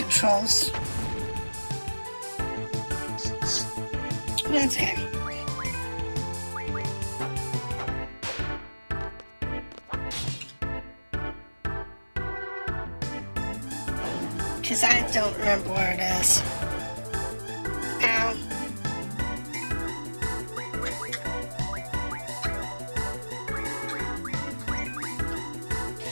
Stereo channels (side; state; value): both; inverted; correlation -1.00